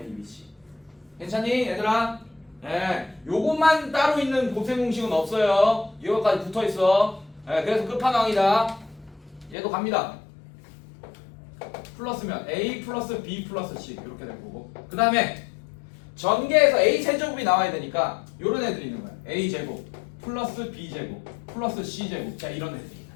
괜찮니, 얘들아? 네, 요것만 따로 있는 곱셈 공식은 없어요. 이거까지 붙어 있어. 네, 그래서 끝판왕이다. 얘도 갑니다. 플러스면 a 플러스 b 플러스 c 이렇게 될 거고. 그 다음에 전개에서 a 세제곱이 나와야 되니까 요런 애들이 있는 거야. a 제곱 플러스 b 제곱 플러스 c 제곱. 자, 이런 애들이 있는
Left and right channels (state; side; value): drops out; right; at 9.6 s